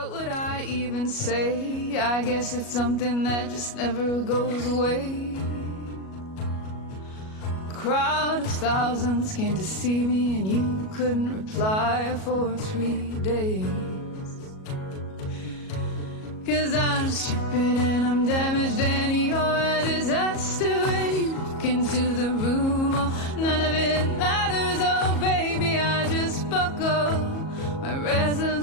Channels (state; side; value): late; right; 37 ms